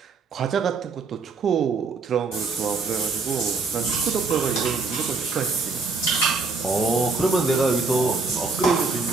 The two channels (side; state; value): left; quieter; 4.2 dB